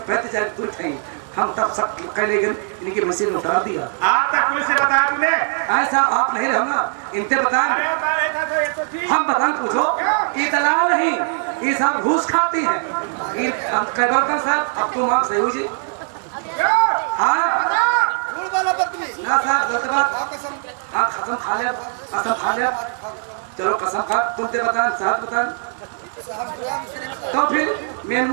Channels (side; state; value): left; silent; 65 dB below the other